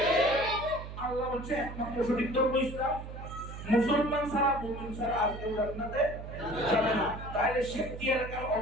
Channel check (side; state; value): right; noise; hum, 10 dB below the sound